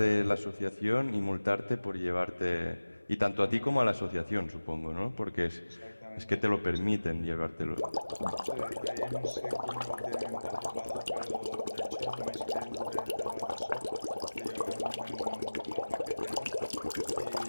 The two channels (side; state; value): both; inverted; correlation -1.00